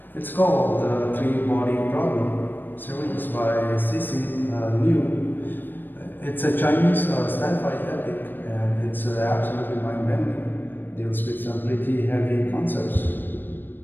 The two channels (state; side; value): late; right; 0.093 ms